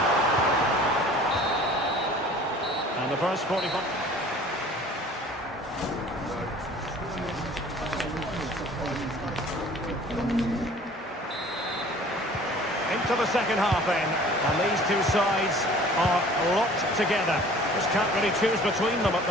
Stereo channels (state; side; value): normal; both; correlation 0.48